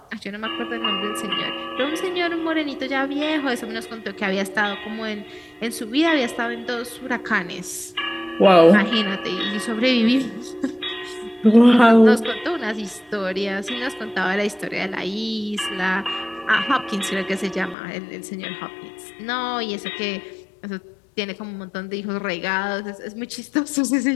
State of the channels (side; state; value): right; drops out; at 17.8 s